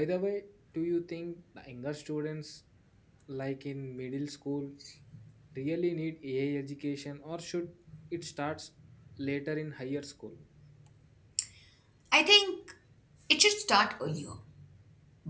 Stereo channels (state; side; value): identical; both; correlation 1.00